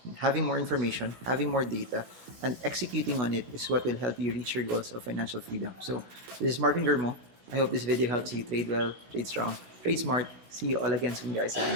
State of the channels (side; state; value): left; late; 16 ms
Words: having more information, having more data, and executing on it is what will help you reach your goals of financial freedom. So this is Marvin Germo. I hope this video helps you trade well, trade strong, trade smart. See you all again soon, guys, and